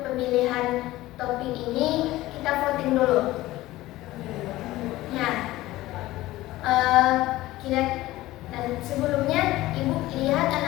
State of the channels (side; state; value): right; quieter; 17.1 dB